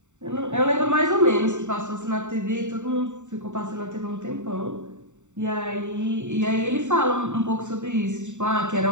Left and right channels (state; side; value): late; left; 0.84 ms